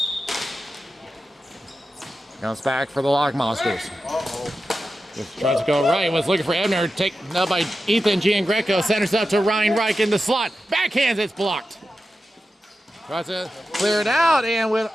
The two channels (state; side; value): normal; both; correlation 0.92